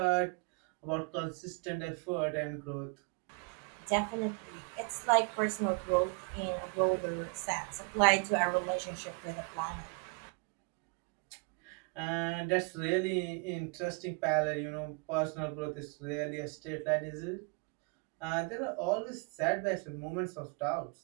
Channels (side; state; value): left; quieter; 34.8 dB